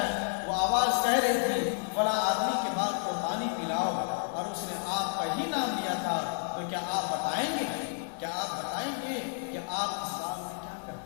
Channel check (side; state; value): right; silent; 57 dB below the other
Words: وہ آواز کہہ رہی تھی فلاں آدمی کے بعد کو پانی پلاؤ، اور اس نے آپ کا ہی نام لیا تھا۔ تو کیا آپ بتائیں گے کہ آپ اس باغ میں کیا